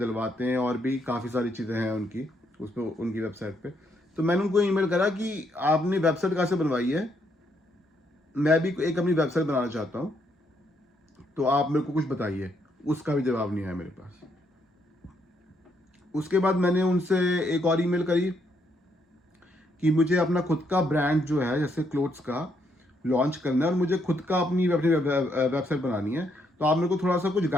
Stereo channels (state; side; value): normal; both; correlation 0.74